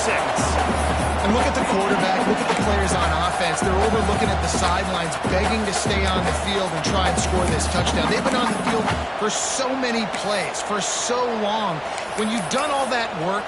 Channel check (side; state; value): both; identical; correlation 1.00